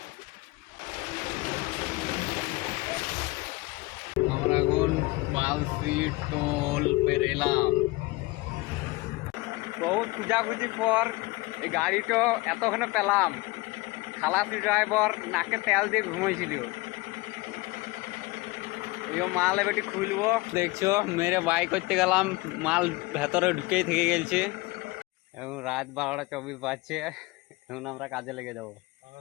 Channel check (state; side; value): quieter; right; 22.3 dB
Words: আমরা এখন পালসি টোল পেরেলাম। বহুত খুঁজাখুঁজি পর এই গাড়িটা এতক্ষণে পেলাম। খালাসি ড্রাইভার নাকে তেল দিয়ে ঘুমাইছিল। এই মাল এবারটি খুলবো, দেখছো মেরে বাই করতে গেলাম, মাল ভেতরে ঢুকেই থেকে গেছে। এখন রাত 12টা 24 বাজছে, এখন আমরা কাজে লেগে যাবো।